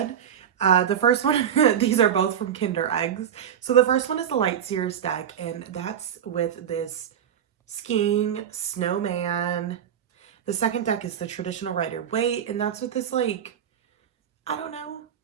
The first one, these are both from Kinder Eggs. So the first one is the Light Seers deck, and that's with this skiing snowman. The second deck is the traditional Rider-Waite, and that's with this, like, I don't know,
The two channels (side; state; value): left; quieter; 9.1 dB